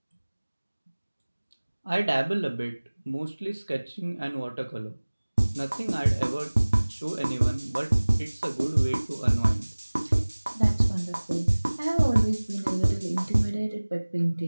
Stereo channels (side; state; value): both; inverted; correlation -1.00